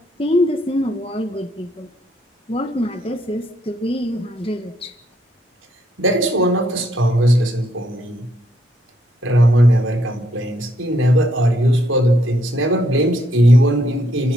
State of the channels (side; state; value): both; normal; correlation 0.73